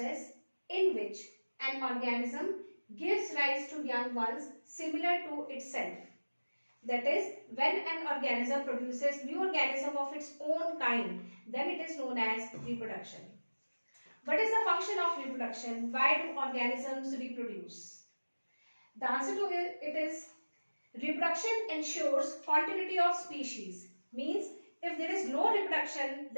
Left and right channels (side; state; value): both; inverted; correlation -1.00